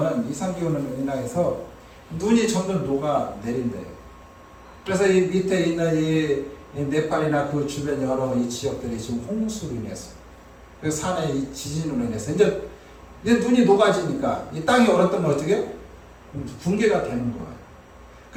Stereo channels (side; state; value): both; identical; correlation 1.00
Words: 이상 기온으로 인해서 눈이 점점 녹아 내린대요. 그래서 이 밑에 있는 이 네팔이나 그 주변 여러 이 지역들이 지금 홍수로 인해서 그 산의 이 지진으로 인해서 이제 눈이 녹아지니까 이 땅이 얼었던 건 어떻게 해요? 붕괴가 되는 거예요.